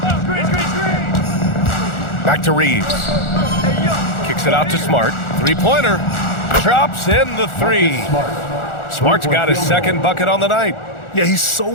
Back to Reeves. Kicks it out to Smart. 3-pointer. Drops in the 3. Smart's got his 2nd bucket on the night. Yeah, he's so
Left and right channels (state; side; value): late; right; 1.4 ms